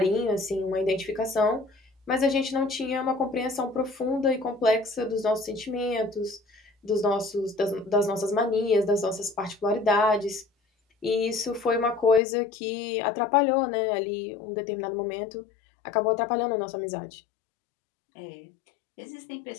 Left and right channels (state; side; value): drops out; right; at 12.2 s